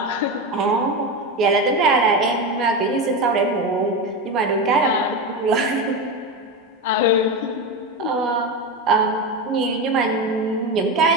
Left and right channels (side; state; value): both; normal; correlation 0.18